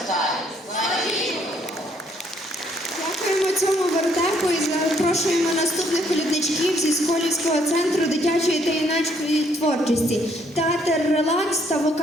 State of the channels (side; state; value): both; normal; correlation 0.68